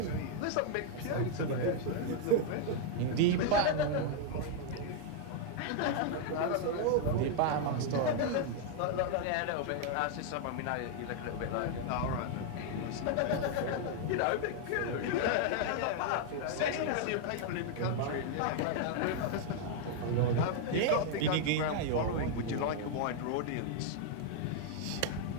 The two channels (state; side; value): different; both; correlation 0.00